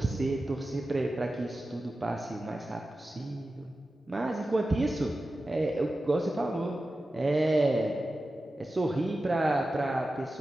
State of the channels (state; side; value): normal; both; correlation 0.94